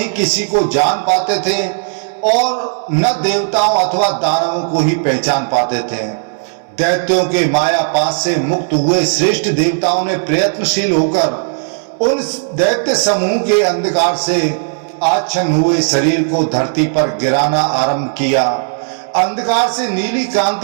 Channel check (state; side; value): silent; left; digital silence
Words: किसी को जान पाते थे और न देवताओं अथवा दानवों को ही पहचान पाते थे। दैत्यों के माया पास से मुक्त हुए श्रेष्ठ देवताओं ने प्रयत्नशील होकर उन दैत्य समूह के अंधकार से आच्छन्न हुए शरीर को धरती पर गिराना आरंभ किया। अंधकार से नीली